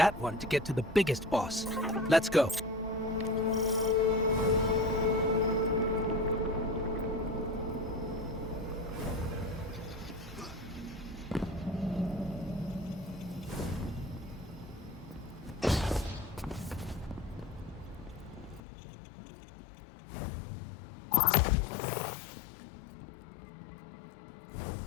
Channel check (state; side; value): drops out; right; at 18.6 s